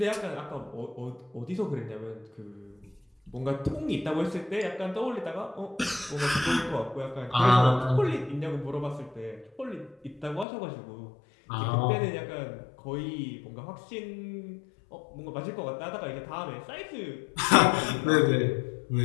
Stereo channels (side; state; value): right; drops out; at 10.5 s